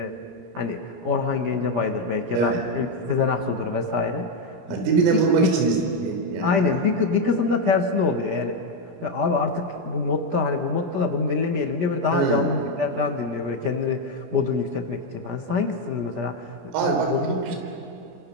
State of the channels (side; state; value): left; late; 17 ms